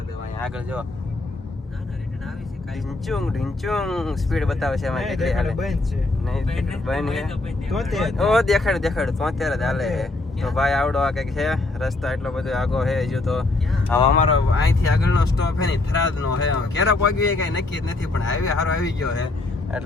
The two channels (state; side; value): quieter; right; 3.1 dB